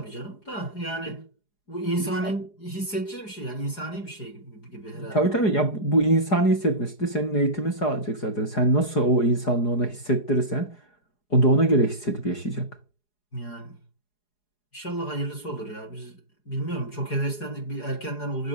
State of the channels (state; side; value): late; right; 4.8 ms